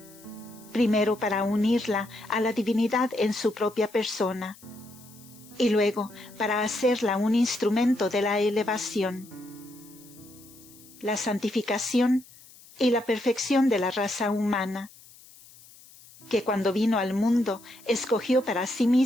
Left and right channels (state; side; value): noise; left; hiss, 23 dB below the sound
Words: primero para unirla a la divinidad en su propia persona, y luego para hacerla un instrumento de la elevación, la santificación y la perfección de la raza humana, que cuando vino al mundo escogió para sí